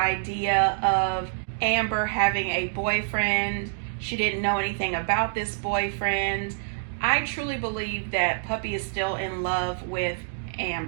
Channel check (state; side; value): silent; left; digital silence